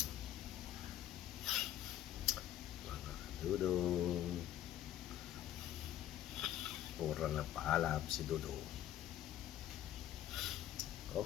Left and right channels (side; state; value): right; quieter; 12.1 dB